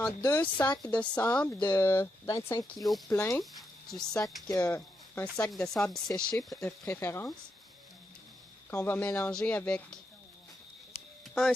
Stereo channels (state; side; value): normal; both; correlation 0.83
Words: 2 sacs de sable de 25 kg plein, un sac de sable séché de préférence, qu'on va mélanger avec un